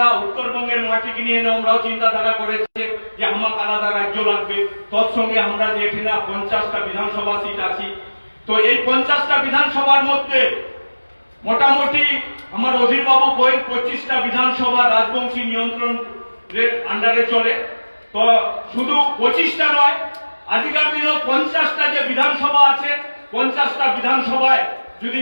উত্তরবঙ্গের মাটিকে নিয়ে আমরাও চিন্তাধারা করেছি যে আমাকে আলাদা রাজ্য লাগবে। তৎসঙ্গে আমরা যে এখানে 50টা বিধানসভা সিট আছি, তো এই 50টা বিধানসভার মধ্যে মোটামুটি আমার অধীরবাবু কয়েক 25টা বিধানসভা রাজবংশী নিয়ন্ত্রণের আন্ডারে চলে। তো শুধু 25টা নয়, আজকের দিনে 50টা যে বিধানসভা আছে 50টা বিধানসভায় যদি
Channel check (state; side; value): inverted; both; correlation -1.00